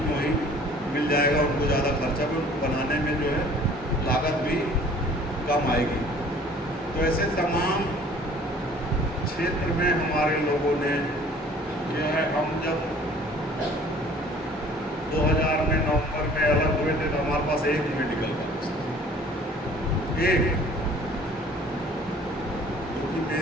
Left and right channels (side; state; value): both; normal; correlation 0.51